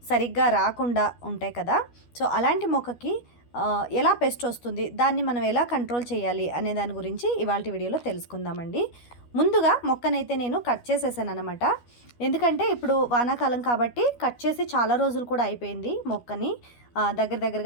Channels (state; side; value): late; right; 12 ms